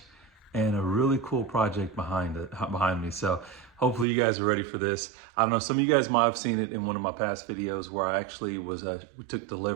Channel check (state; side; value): drops out; left; at 4.0 s